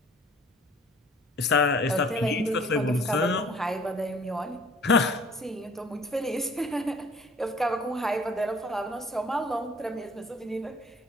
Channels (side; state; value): both; normal; correlation 0.53